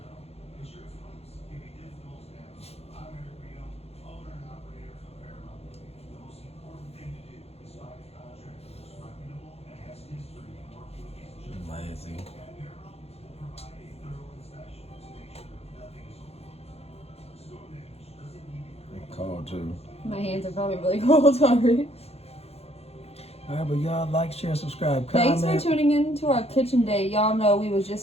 Lazy. Cold too. My hands are probably really cold already. Alright, but y'all like, share, subscribe, comment. Thanks for tuning in to our kitchen day. Y'all know we was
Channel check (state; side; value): late; right; 0.30 ms